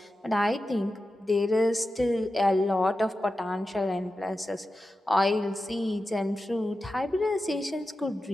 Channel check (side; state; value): both; normal; correlation 0.92